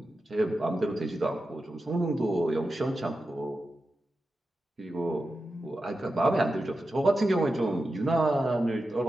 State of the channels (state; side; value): normal; both; correlation 0.91